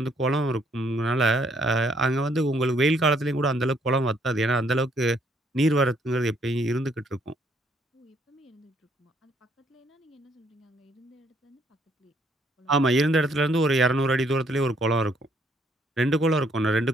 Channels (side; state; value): both; normal; correlation 0.68